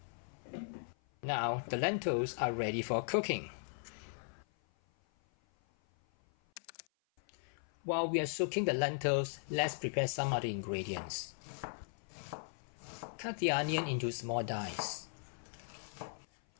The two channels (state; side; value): silent; right; 52 dB below the other